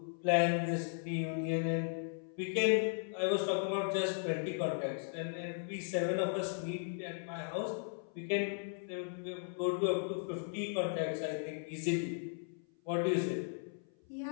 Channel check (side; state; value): right; silent; 53 dB below the other